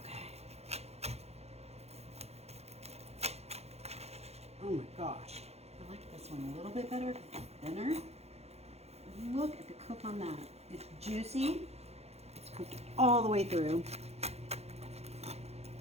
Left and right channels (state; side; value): late; left; 0.31 ms